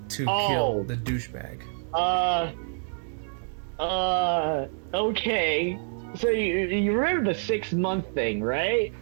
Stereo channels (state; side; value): silent; left; digital silence